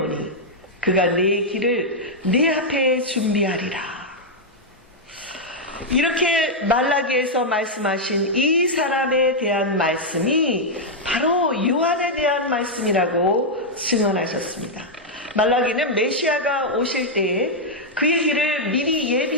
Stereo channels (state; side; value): normal; both; correlation -0.03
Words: 그가 내 길을 내 앞에 준비하리라. 이렇게 말라기에서 말씀하신 이 사람에 대한 말씀이 바로 요한에 대한 말씀이라고 증언하셨습니다. 말라기는 메시아가 오실 때에 그의 길을 미리